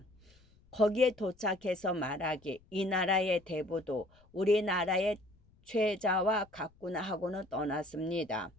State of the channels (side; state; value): left; noise; rumble, 30 dB below the sound